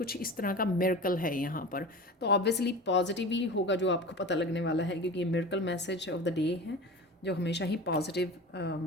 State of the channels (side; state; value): both; normal; correlation 0.33